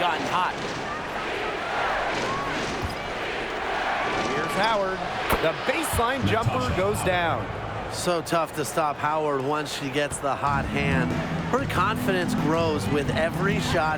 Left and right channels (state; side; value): identical; both; correlation 1.00